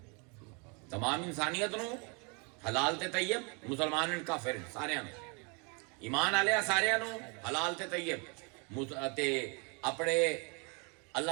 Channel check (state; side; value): quieter; left; 33.1 dB